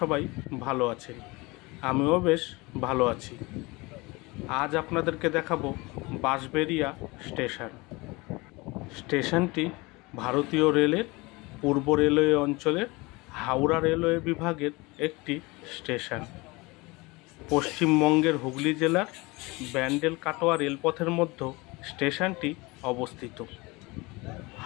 সবাই ভালো আছেন, আমিও বেশ ভালো আছি। আজ আপনাদেরকে দেখাবো বাঁশবেড়িয়া স্টেশন। স্টেশনটি ভারতীয় রেলের পূর্ব রেলওয়ে অঞ্চলের হাওড়া রেলওয়ে বিভাগের একটি স্টেশন। পশ্চিমবঙ্গের হুগলি জেলার ব্যান্ডেল কাটোয়া রেলপথের মধ্যে স্টেশনটি অবস্থিত।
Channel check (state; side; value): quieter; right; 24.2 dB